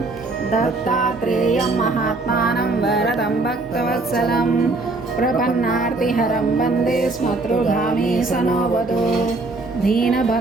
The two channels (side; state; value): left; quieter; 3.3 dB